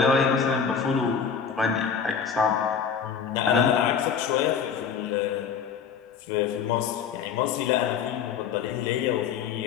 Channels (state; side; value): quieter; right; 6.9 dB